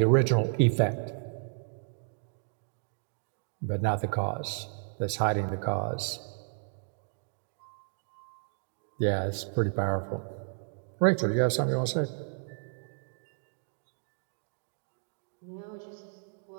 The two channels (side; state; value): left; silent; digital silence